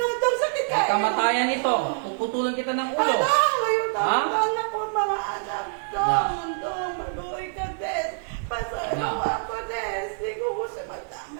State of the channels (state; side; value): silent; left; digital silence